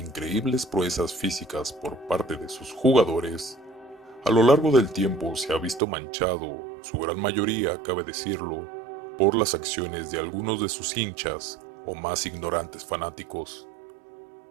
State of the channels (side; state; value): left; drops out; at 5.8 s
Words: proezas físicas por parte de sus jugadores, a lo largo del tiempo se ha visto manchado, su gran mayoría, cabe decirlo, por las acciones de algunos de sus hinchas o más ignorantes fanáticos.